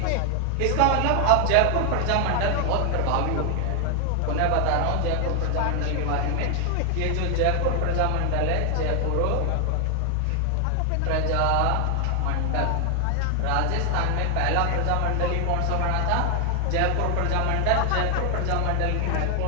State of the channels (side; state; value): both; different; correlation 0.00